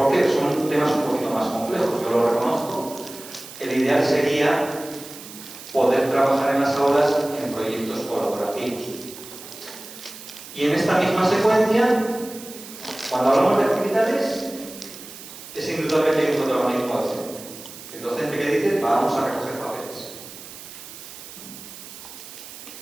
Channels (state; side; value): noise; right; hiss, 15 dB below the sound